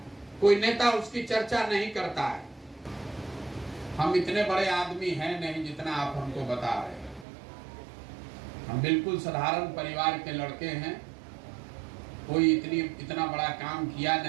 कोई नेता उसकी चर्चा नहीं करता है। हम इतने बड़े आदमी हैं नहीं जितना आप हमको बता रहे हैं। हम बिल्कुल साधारण परिवार के लड़के हैं, कोई इतना बड़ा काम किया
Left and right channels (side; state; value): left; drops out; at 7.2 s